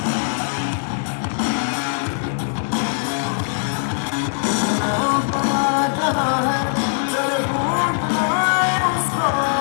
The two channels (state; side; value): silent; right; 65 dB below the other